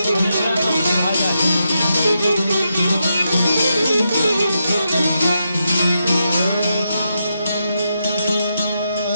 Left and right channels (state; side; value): inverted; both; correlation -0.84